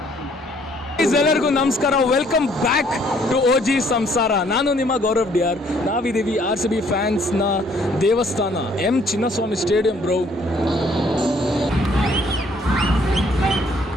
ಎಲ್ಲರಿಗೂ ನಮಸ್ಕಾರ, ವೆಲ್ಕಮ್ ಬ್ಯಾಕ್ ಟು OG ಸಂಸಾರ. ನಾನು ನಿಮ್ಮ ಗೌರವ್ DR. ನಾವಿದ್ದೀವಿ RCB ಫ್ಯಾನ್ಸ್ನ ದೇವಸ್ಥಾನ M Chinnaswamy stadium bro.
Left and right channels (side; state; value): both; normal; correlation 0.63